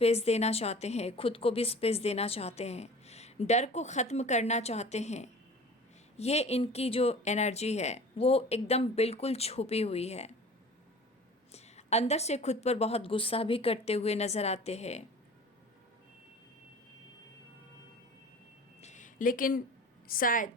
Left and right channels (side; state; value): both; normal; correlation 0.41